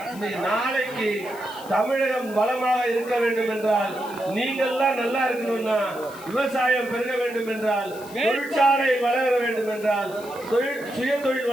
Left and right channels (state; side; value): noise; left; hiss, 19 dB below the sound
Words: இன்னைக்கு நாளைக்கு தமிழகம் வளமாக இருக்க வேண்டும் என்றால், நீங்கள்லாம் நல்லா இருக்கணும்னா, விவசாயம் பெருக வேண்டும் என்றால், தொழிற்சாலை வளர வேண்டும் என்றால், சுய தொழில்